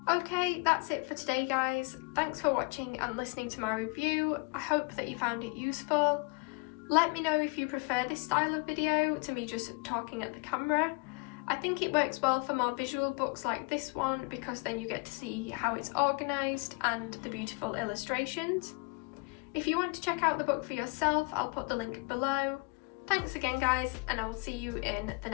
Okay, that's it for today, guys. Thanks for watching and listening to my review. I hope that you found it useful. Let me know if you prefer this style of video to me just talking at the camera. I think it works well for more visual books like this one because then you get to see how it's organised and the beautiful illustrations. If you want to check out the book for yourself, I'll put the link below. Thanks again, guys, and I will see you in the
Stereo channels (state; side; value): quieter; right; 30.9 dB